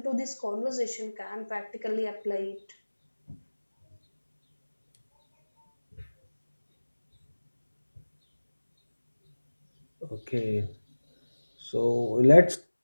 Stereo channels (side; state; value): both; inverted; correlation -1.00